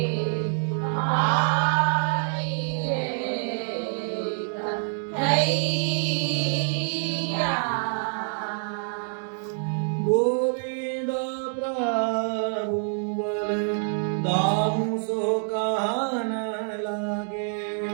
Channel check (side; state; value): left; silent; 61 dB below the other